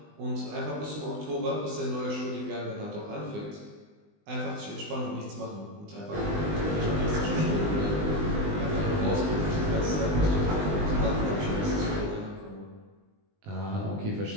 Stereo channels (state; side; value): late; left; 20 ms